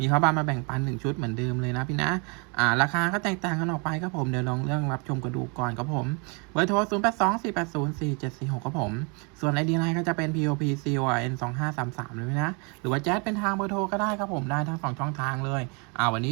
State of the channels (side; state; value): left; quieter; 32.9 dB